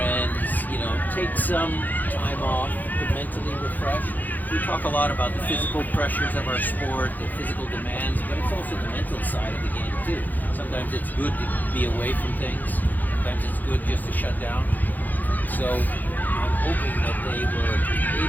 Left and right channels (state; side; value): late; right; 0.084 ms